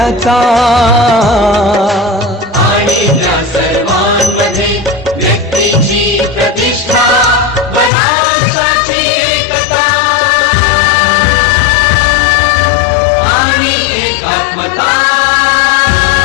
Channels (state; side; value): drops out; right; at 7.9 s